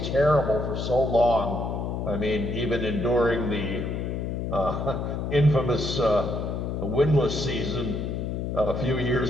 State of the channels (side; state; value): left; noise; hum, 3 dB below the sound